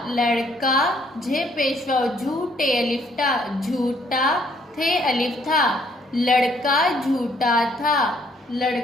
लड़का, झे पेशवा झूठे अलिफ टा, झूठा, थे अलिफ था, लड़का झूठा था,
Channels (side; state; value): both; normal; correlation 0.66